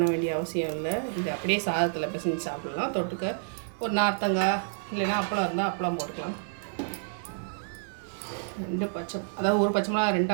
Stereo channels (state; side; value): silent; left; digital silence